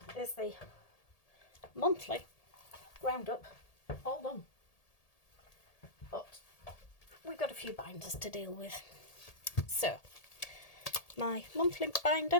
is the monthly roundup all done. But we've got a few binders to deal with. So, my monthly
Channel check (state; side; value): late; right; 1.8 ms